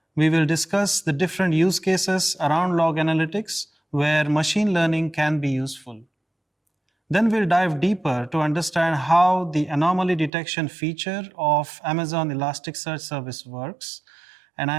we will discuss the different use cases around log analytics where machine learning can be useful. Then we'll dive deeper to understand how the anomaly detection feature of Amazon Elasticsearch service works. And I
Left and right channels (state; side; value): drops out; left; at 10.3 s